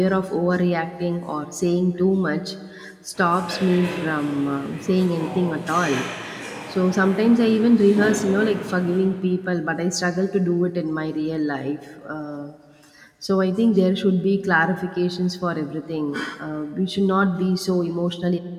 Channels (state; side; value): identical; both; correlation 1.00